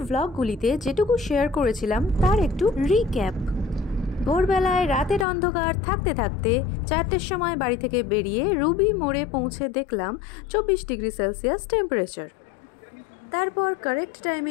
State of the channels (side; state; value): right; drops out; at 5.2 s